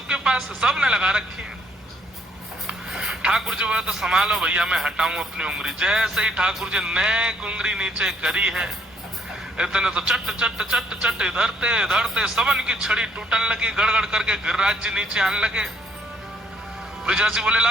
पास है, सबने लगा रखी है। ठाकुर जी बोले तो संभालो भैया, मैं हटाऊं अपनी उंगली। जैसे ही ठाकुर जी ने उंगली नीचे करी है, इतने तो चट चट चट चट इधरते इधरते सबन की छड़ी टूटने लगी। गड़गड़ करके गिरिराज जी नीचे आने लगे। ब्रजवासी बोले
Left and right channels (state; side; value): normal; both; correlation 0.67